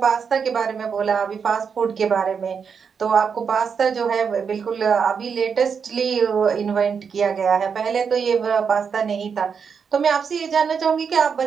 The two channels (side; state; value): left; quieter; 6.3 dB